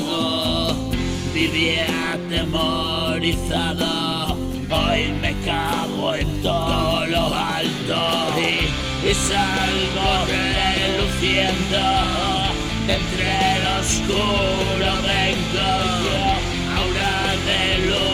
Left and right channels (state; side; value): identical; both; correlation 1.00